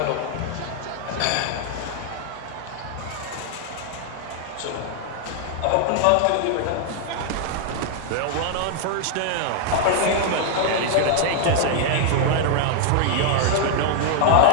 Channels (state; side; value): different; both; correlation 0.00